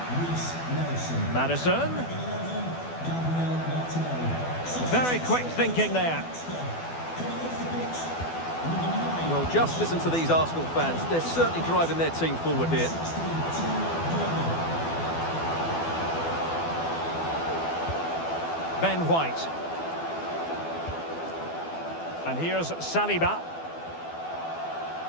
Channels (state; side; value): late; right; 12 ms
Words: Reece Nelson. Maddison. 11, Gabriel Martinelli. Very quick thinking there. Coming off the pitch, number 9. Well, just listen to these Arsenal fans. They're certainly driving their team forward here. Ben White. And here's Saliba.